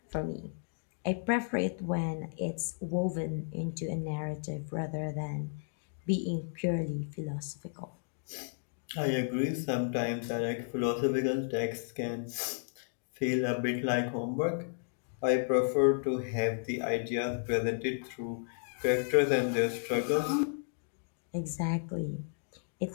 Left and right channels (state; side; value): silent; right; digital silence